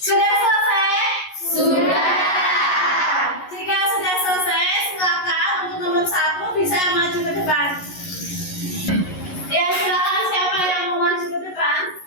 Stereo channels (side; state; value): right; late; 11 ms